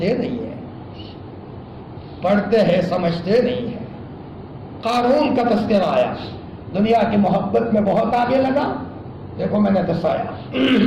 نہیں ہیں، پڑھتے ہیں سمجھتے نہیں ہیں۔ قارون کا تذکرہ آیا، دنیا کی محبت میں بہت آگے لگا۔ دیکھو میں نے دسایا،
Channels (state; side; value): identical; both; correlation 1.00